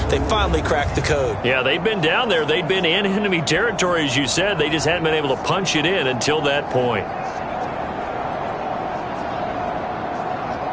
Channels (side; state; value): both; identical; correlation 1.00